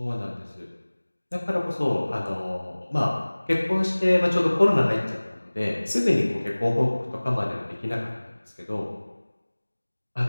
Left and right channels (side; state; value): both; inverted; correlation -1.00